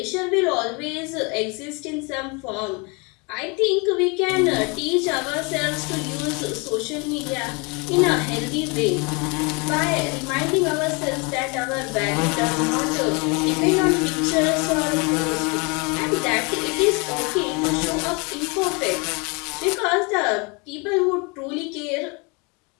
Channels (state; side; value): quieter; right; 30.4 dB